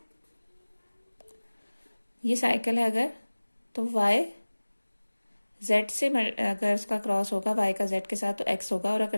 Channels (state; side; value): inverted; both; correlation -1.00